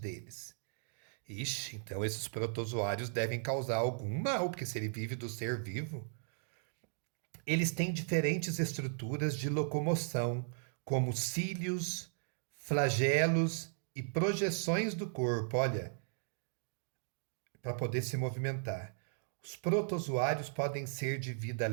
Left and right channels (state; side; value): silent; left; digital silence